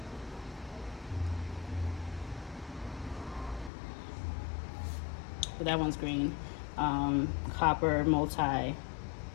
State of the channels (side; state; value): right; drops out; at 3.7 s